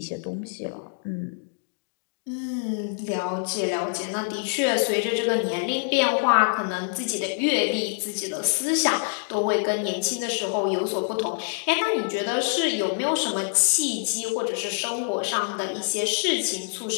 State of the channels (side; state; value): right; silent; digital silence